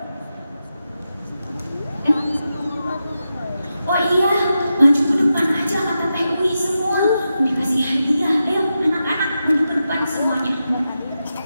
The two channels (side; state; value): both; inverted; correlation -0.89